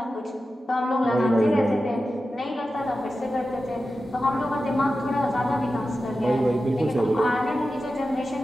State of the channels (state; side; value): normal; both; correlation 0.92